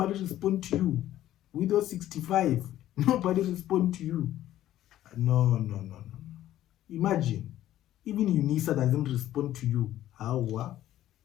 responds to you. With your 65, nobody responds to you. No. Imagine, even UNISA doesn't respond to you. How?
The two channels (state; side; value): quieter; right; 13.2 dB